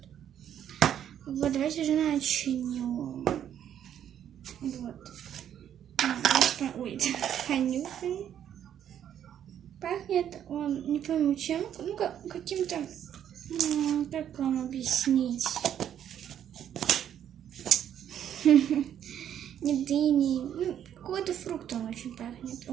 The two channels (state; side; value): quieter; left; 9.9 dB